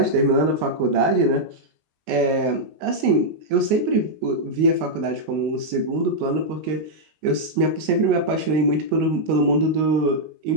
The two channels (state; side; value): late; left; 19 ms